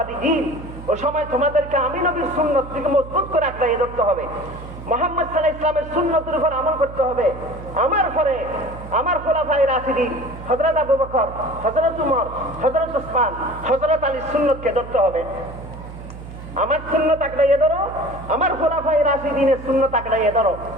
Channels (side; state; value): right; noise; hum, 13 dB below the sound